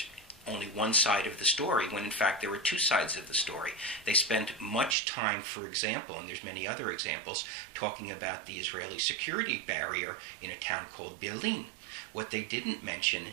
only one side of the story, when in fact there were two sides of the story. They spent much time, for example, and there's many other examples, talking about the Israeli security barrier in a town called Berlin. What they didn't mention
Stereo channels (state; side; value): drops out; left; at 5.0 s